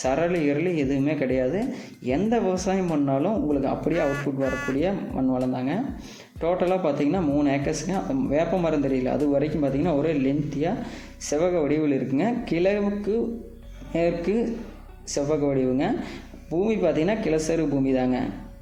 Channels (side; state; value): both; identical; correlation 1.00